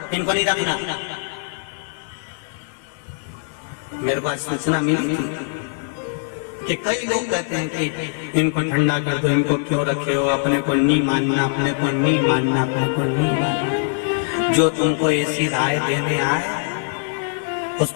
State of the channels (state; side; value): silent; right; digital silence